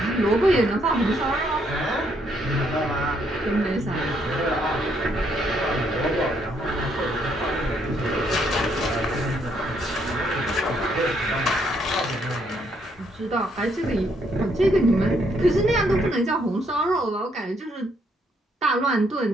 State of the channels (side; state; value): both; normal; correlation 0.71